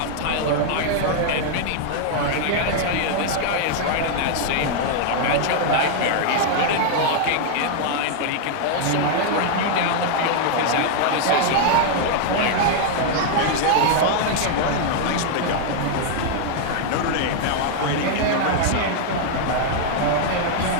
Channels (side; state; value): both; different; correlation 0.00